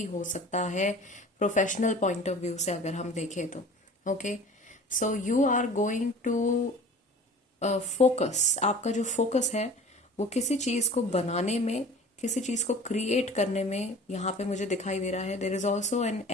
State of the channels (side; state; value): both; normal; correlation 0.43